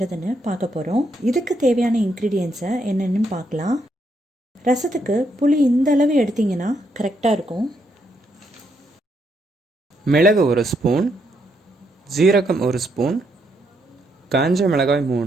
பார்க்க போகிறோம். இதுக்கு தேவையான இன்க்ரீடியன்ஸை என்னென்னு பார்க்கலாம். ரசத்துக்கு புளி இந்த அளவு எடுத்திங்கன்னா கரெக்டாக இருக்கும். மிளகு 1 ஸ்பூன், ஜீரகம் 1 ஸ்பூன், காஞ்ச மிளகாய்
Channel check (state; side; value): normal; both; correlation 0.77